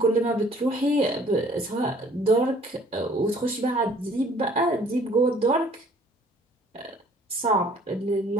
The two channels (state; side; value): normal; both; correlation 0.56